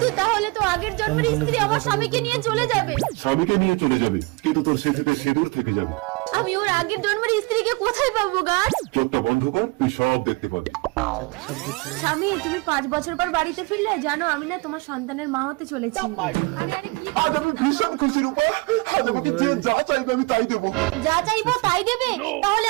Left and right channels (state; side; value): quieter; left; 26.1 dB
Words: তাহলে তো আগের জন্মের স্ত্রী আমার স্বামীকে নিয়ে চলে যাবে। স্বামীকে নিয়ে চলে যাবে, কিন্তু তোর স্মৃতিতে সিঁদুর থেকে যাবে। আমি ওর আগের জন্মের স্ত্রীকে কোথায় পাবো গাছ? চোখটা বন্ধ কর, তুই সব দেখতে পাবি। স্বামী, তুমি 5 বছর পর বাড়িতে ফিরলে। জানো, আমি না তোমার সন্তানের মা হতে চলেছি। আজ আমি ভীষণ খুশি রূপা। আজ আমাকে যে যা চাইবে আমি তাই দেবো। যা চাইবো তাই দেবে? তাহলে